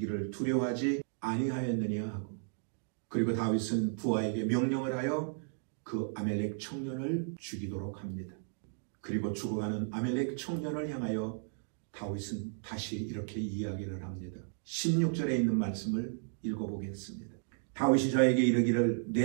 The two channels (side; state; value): left; silent; digital silence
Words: 두려워하지 아니하였느냐 하고, 그리고 다윗은 부하에게 명령을 하여 그 아멜렉 청년을 죽이도록 합니다. 그리고 죽어가는 아멜렉 청년을 향하여 다윗은 다시 이렇게 이야기를 합니다. 16절에 있는 말씀을 읽어보겠습니다. 다윗이 저에게 이르기를